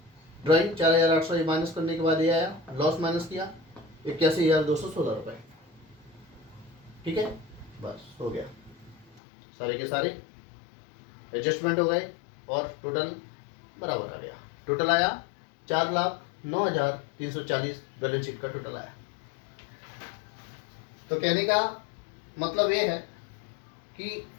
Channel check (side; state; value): right; drops out; at 9.2 s